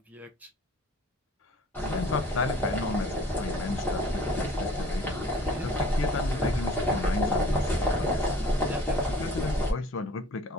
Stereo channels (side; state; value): both; normal; correlation 0.50